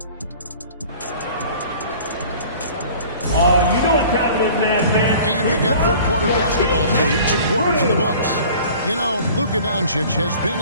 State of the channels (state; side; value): inverted; both; correlation -0.47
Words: you know what time it is, man. And we've got third quarter basketball for you. 2 quarters in the books. You know, Luka Doncic has been